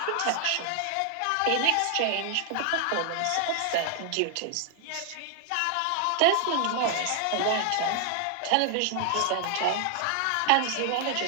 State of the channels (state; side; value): different; both; correlation 0.00